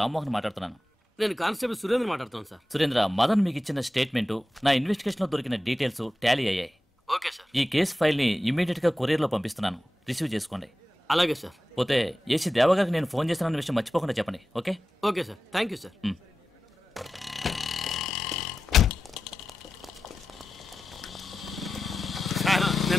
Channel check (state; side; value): normal; both; correlation 0.93